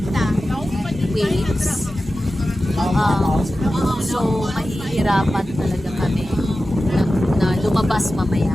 waves. So, mahihirapan talaga kami na lumabas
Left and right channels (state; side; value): normal; both; correlation 0.94